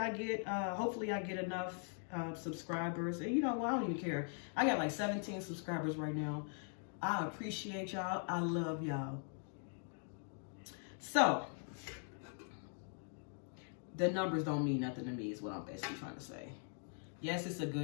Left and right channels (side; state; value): right; silent; 50 dB below the other